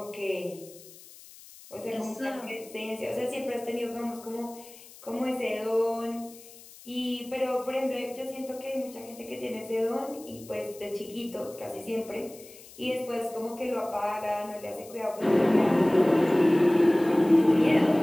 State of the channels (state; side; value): noise; left; hiss, 20 dB below the sound